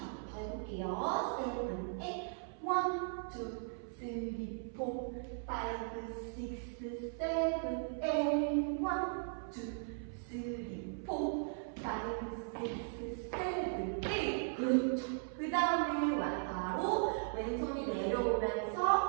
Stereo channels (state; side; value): silent; left; 53 dB below the other